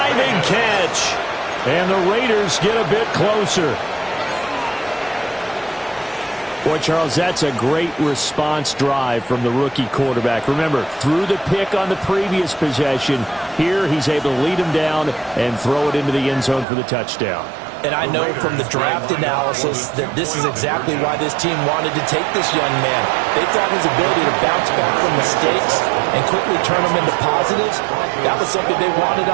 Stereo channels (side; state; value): left; drops out; at 16.7 s